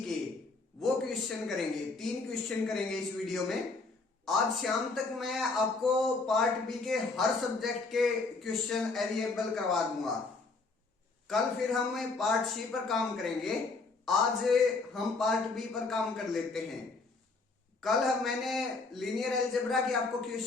के, वो क्वेश्चन करेंगे। 3 क्वेश्चन करेंगे इस वीडियो में। आज शाम तक मैं आपको पार्ट बी के हर सब्जेक्ट के क्वेश्चन अवेलेबल करवा दूंगा। कल फिर हम पार्ट सी पर काम करेंगे। आज हम पार्ट बी पर काम कर लेते हैं। कल मैंने लीनियर अलजेब्रा के आपको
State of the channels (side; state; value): right; quieter; 3.8 dB